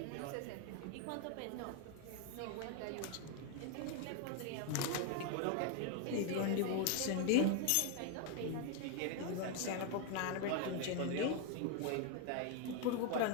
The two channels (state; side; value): different; both; correlation 0.01